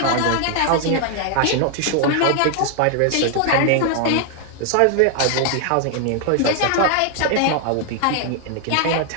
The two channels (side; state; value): both; different; correlation 0.00